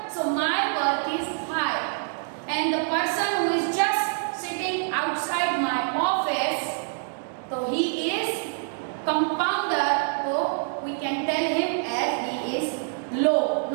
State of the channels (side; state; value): left; silent; digital silence